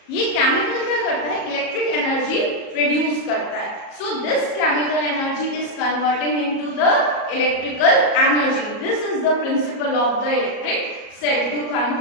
ये केमिकल क्या करता है, इलेक्ट्रिक एनर्जी प्रोड्यूस करता है. So this chemical energy is converting into the electrical energy. This is the principle of the electric cell, to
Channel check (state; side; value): late; right; 37 ms